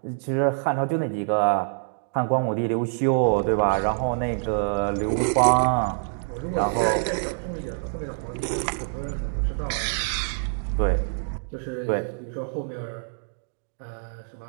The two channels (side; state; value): left; silent; digital silence